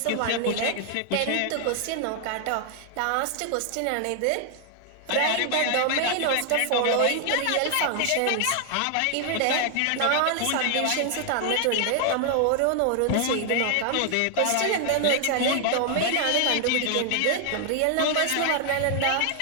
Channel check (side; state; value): both; different; correlation 0.00